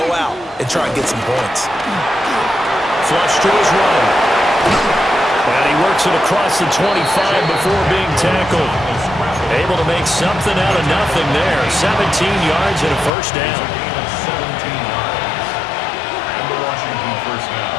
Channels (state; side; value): drops out; right; at 13.1 s